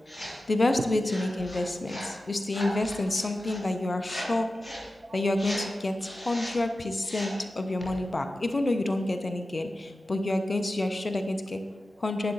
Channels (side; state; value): both; normal; correlation 0.94